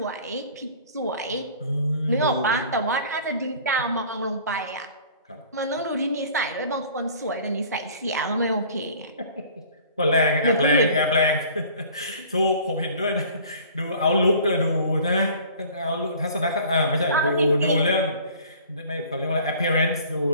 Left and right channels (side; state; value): both; inverted; correlation -0.49